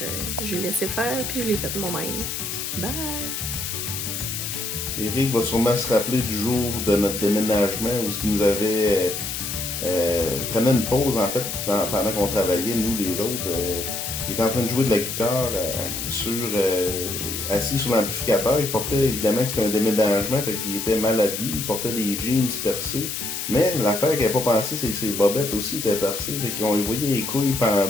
j'ai laissé faire puis je l'ai fait moi-même. Bye! Éric va sûrement se rappeler du jour de notre déménagement où il nous avait prenait une pause en fait pendant qu'on travaillait, nous les autres. Il était en train de jouer de la guitare assis sur l'amplificateur. Il portait évidemment que c'était un déménagement, fait qu'il était mal habillé, il portait des jeans percés. Mais l'affaire qu'il n'avait pas pensé, c'est que ses bobettes aussi étaient percées. Fait qu'on y voyait les couilles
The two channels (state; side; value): noise; left; hiss, 4 dB below the sound